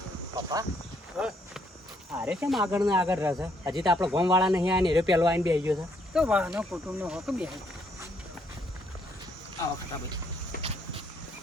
પપ્પા અરે કેમ આગળ ને આગળ રહેશે હજી તો આપણે ગોમવાળા નહીં આને રે પેલો આવીને બેસી ગયો છે તો વાહનો કુટુંબનો હોક બે આવો ખટા ભાઈ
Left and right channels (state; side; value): normal; both; correlation 0.70